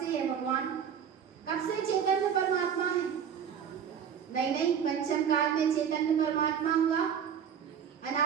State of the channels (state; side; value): quieter; left; 8.0 dB